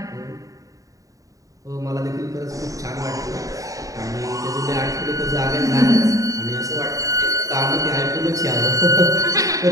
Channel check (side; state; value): left; late; 0.16 ms